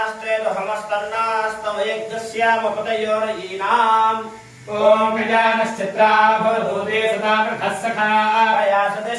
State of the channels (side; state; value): both; identical; correlation 1.00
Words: ओम गजानश्चित्रा भवभूते सदा कृतः सखा या